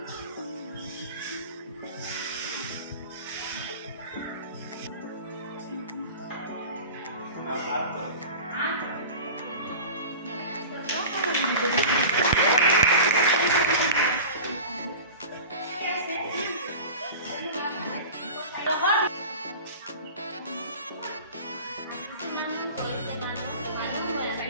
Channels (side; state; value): both; inverted; correlation -0.36